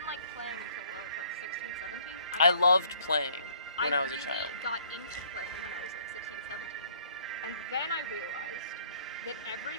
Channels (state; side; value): inverted; both; correlation -0.60